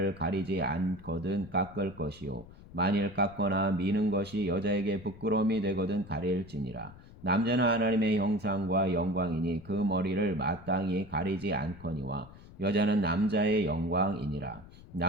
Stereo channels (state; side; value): noise; left; rumble, 19 dB below the sound